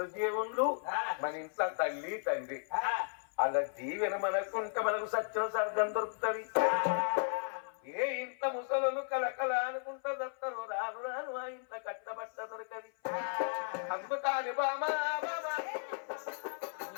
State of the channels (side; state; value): right; silent; 54 dB below the other